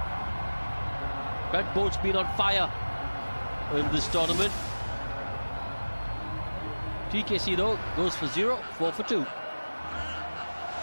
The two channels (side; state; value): both; inverted; correlation -1.00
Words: Brent Boult's been on fire in this tournament. TKC though goes for 0, 4 for 2.